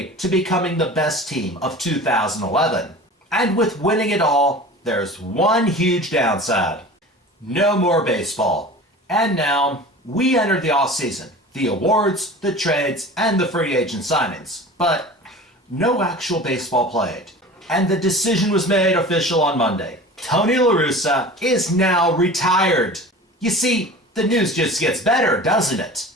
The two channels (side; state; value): both; normal; correlation 0.38